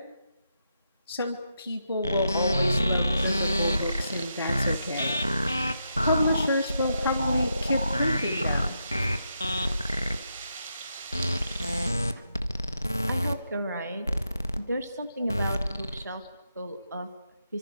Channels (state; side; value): inverted; both; correlation -0.83